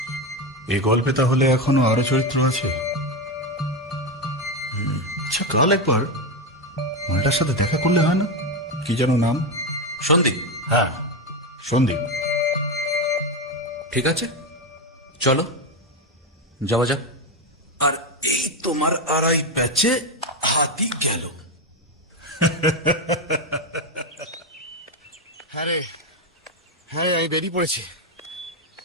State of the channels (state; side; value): normal; both; correlation 0.12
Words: এই গল্পে তাহলে এখনো আরো চরিত্র আছে। আচ্ছা, কাল একবার মালটার সাথে দেখা করলে হয় না? কি যেন নাম? সন্দীপ। হ্যাঁ, সন্দীপ। ঠিক আছে, চলো যাওয়া যাক। আর এই তোমার আড়াই ব্যাচে হাতি গেল। হ্যাঁ রে, হ্যাঁ আমি বেরিয়ে পড়েছি।